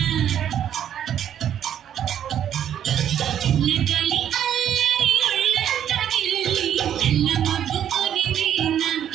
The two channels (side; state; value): left; quieter; 9.9 dB